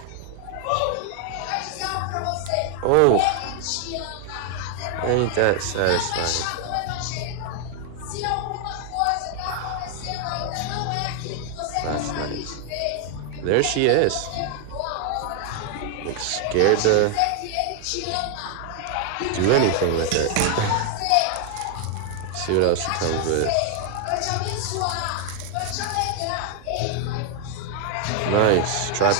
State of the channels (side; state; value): both; different; correlation 0.01